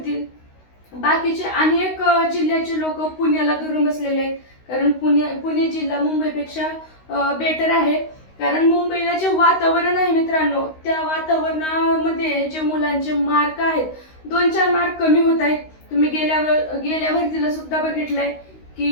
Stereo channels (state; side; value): late; right; 16 ms